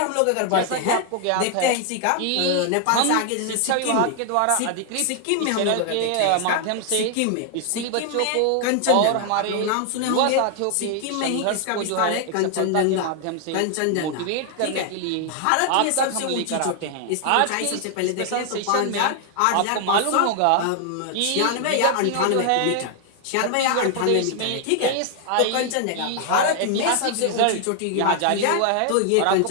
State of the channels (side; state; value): both; different; correlation 0.00